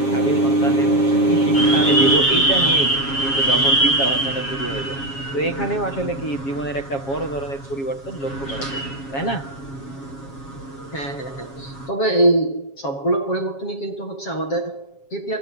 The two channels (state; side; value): late; right; 7.3 ms